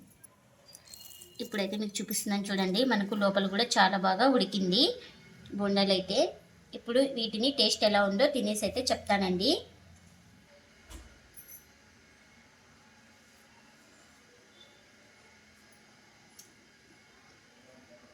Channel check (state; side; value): identical; both; correlation 1.00